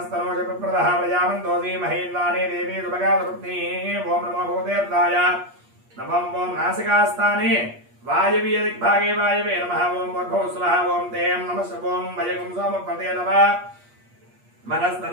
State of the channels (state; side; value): late; left; 8.4 ms